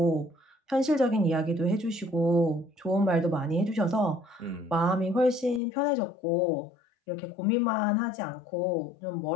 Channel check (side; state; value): right; drops out; at 5.6 s